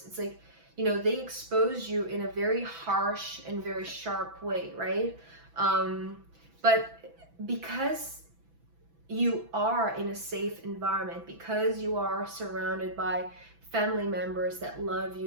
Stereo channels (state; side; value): late; left; 6.0 ms